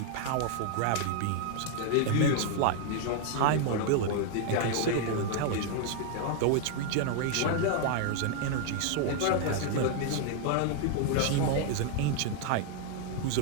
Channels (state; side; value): different; both; correlation 0.00